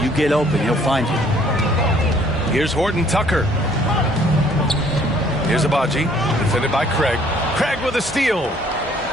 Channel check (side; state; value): both; normal; correlation 0.60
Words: you get open, he'll find you. Here's Horton Tucker. Here's Abaji, defended by Craig. Craig with a steal.